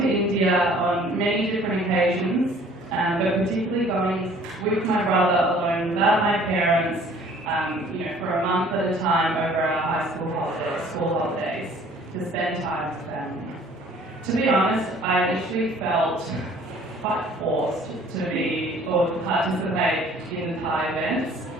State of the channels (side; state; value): both; normal; correlation 0.54